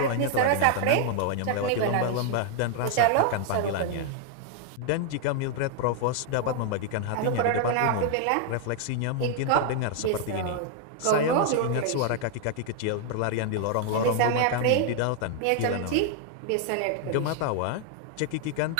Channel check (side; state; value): both; different; correlation 0.00